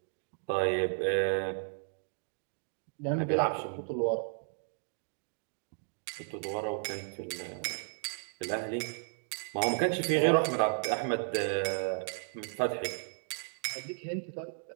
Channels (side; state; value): left; silent; digital silence